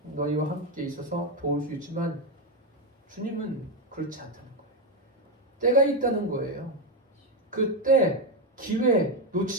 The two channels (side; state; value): both; normal; correlation 0.07